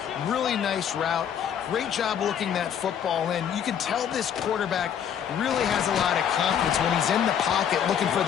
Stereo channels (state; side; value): quieter; right; 8.7 dB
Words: Really nice route. Great job looking that football in. You can tell this quarterback really has a lot of confidence when he's in the pocket looking for